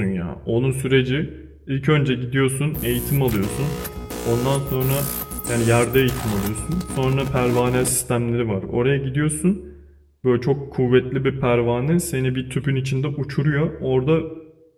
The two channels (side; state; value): both; identical; correlation 1.00